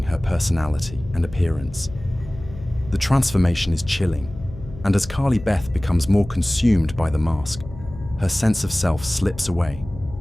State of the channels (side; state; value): left; noise; hum, 15 dB below the sound